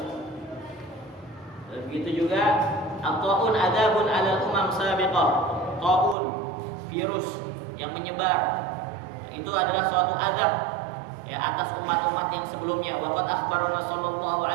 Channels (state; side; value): drops out; left; at 6.2 s